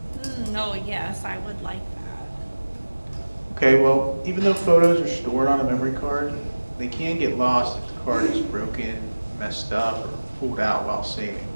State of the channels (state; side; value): inverted; both; correlation -1.00